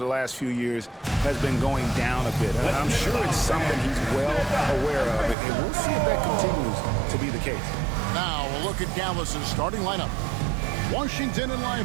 the last few years has been going down a bit. I'm sure it's something he's well aware of, and we'll see if that continues to be the case. Now we'll look at Dallas's starting lineup. Washington and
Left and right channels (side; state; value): left; drops out; at 5.4 s